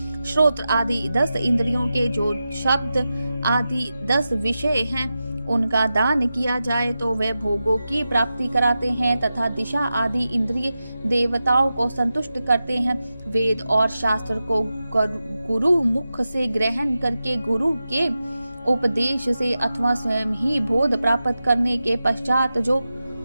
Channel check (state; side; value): inverted; both; correlation -0.92